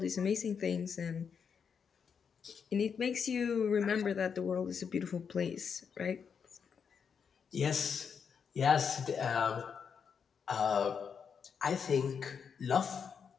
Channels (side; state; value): right; quieter; 6.6 dB